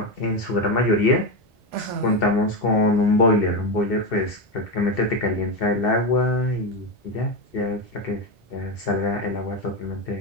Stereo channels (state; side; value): normal; both; correlation 0.13